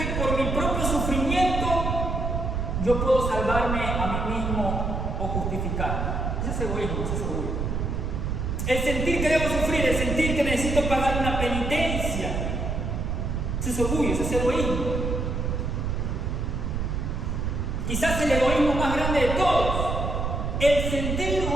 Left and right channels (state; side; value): noise; right; rumble, 1 dB below the sound